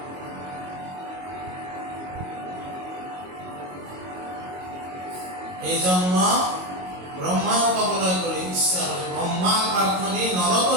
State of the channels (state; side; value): late; left; 22 ms